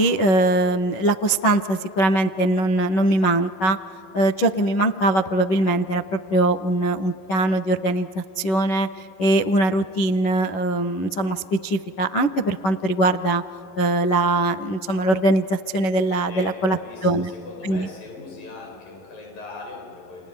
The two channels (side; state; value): right; late; 11 ms